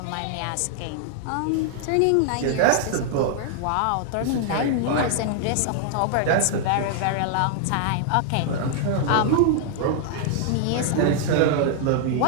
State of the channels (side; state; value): both; different; correlation 0.00